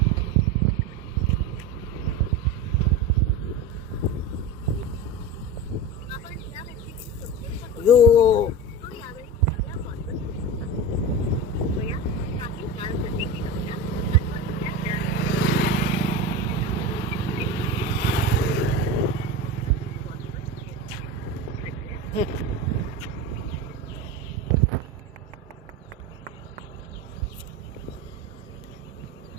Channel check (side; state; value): both; normal; correlation 0.26